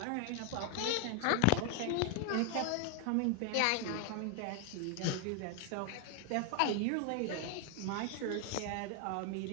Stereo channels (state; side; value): different; both; correlation 0.00